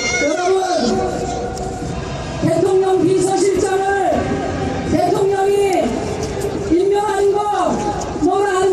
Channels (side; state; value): both; identical; correlation 1.00